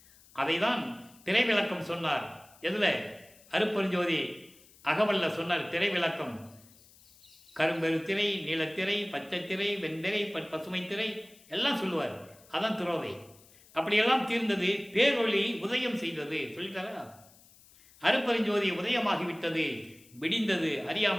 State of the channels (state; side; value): noise; left; hiss, 26 dB below the sound